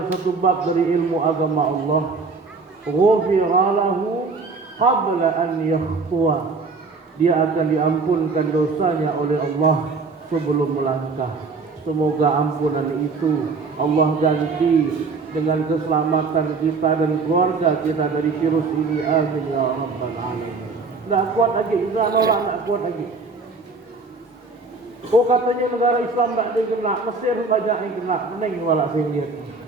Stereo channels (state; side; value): quieter; left; 4.2 dB